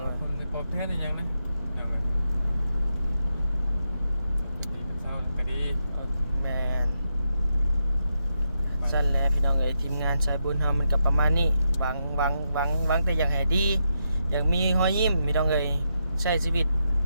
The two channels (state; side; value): inverted; both; correlation -0.83